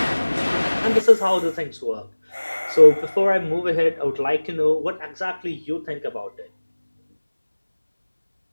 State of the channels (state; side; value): inverted; both; correlation -1.00